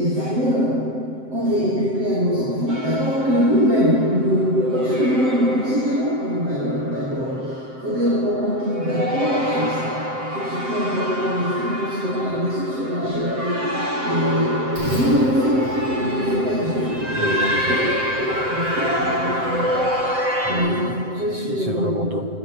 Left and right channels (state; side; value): late; left; 7.7 ms